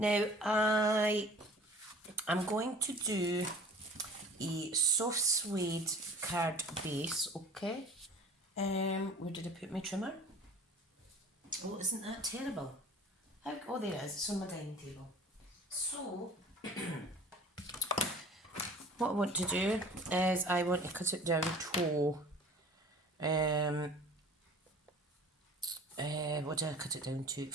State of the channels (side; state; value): both; normal; correlation 0.45